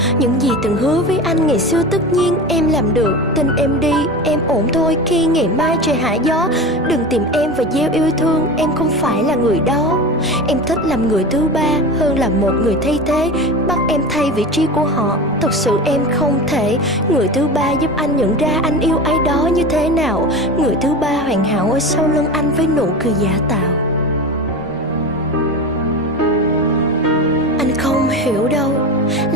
Những gì từng hứa với anh ngày xưa tất nhiên em làm được. Tin em đi, em ổn thôi khi ngày mai trời hạ gió. Đừng tìm em và gieo yêu thương, em không phải là người đó. Em thích làm người thứ ba hơn là một người thay thế, bắt em thay vị trí của họ. Thật sự em không thể. Người thứ ba giúp anh nhận ra anh yêu ai đó như thế nào. Người thứ ba hoàn hảo ở sau lưng anh với nụ cười giả tạo. Anh không hiểu đâu,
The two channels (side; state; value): both; normal; correlation 0.28